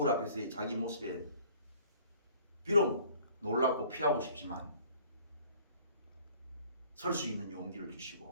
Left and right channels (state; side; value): inverted; both; correlation -0.54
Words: 앞에서의 자기 모습에 비록 놀랍고 피하고 싶지만 설 수 있는 용기를